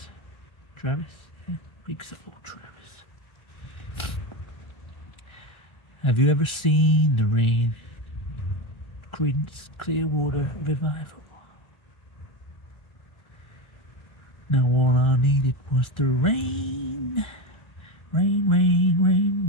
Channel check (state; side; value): late; right; 1.4 ms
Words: Travis? Yeah, big soul Travis. Have you ever seen the rain? Creedence Clearwater Revival. Now all I needed was the rain. Rain, rain, rain,